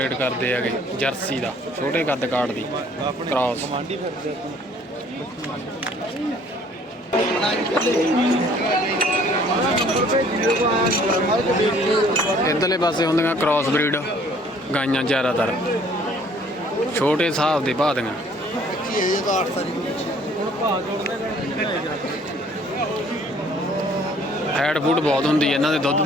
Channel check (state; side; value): normal; both; correlation 0.57